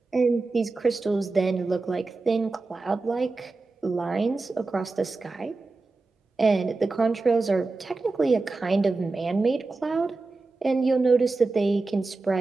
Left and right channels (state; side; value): quieter; left; 3.6 dB